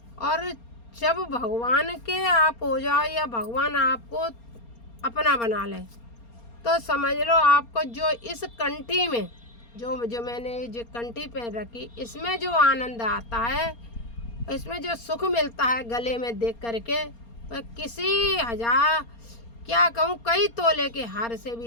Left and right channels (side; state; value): right; late; 4.3 ms